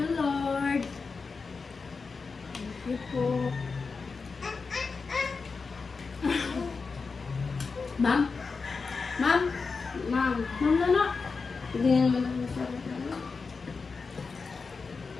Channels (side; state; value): right; quieter; 4.7 dB